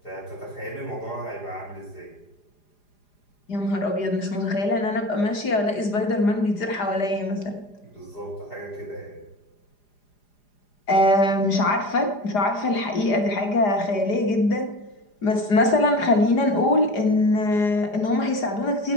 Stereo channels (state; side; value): late; right; 4.9 ms